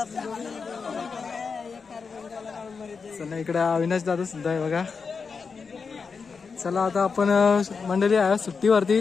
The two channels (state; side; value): quieter; right; 5.3 dB